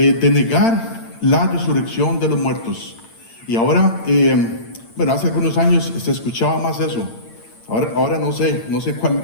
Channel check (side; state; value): right; late; 8.8 ms